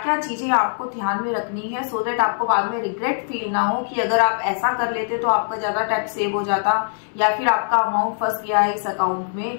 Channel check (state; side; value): silent; right; 64 dB below the other